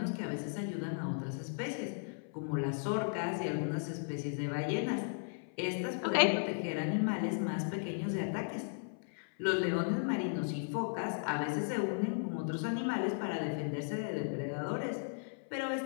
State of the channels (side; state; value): right; silent; 54 dB below the other